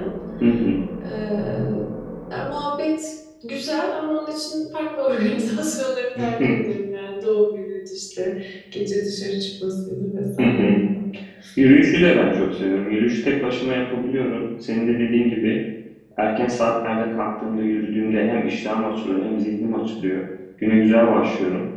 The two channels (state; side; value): identical; both; correlation 1.00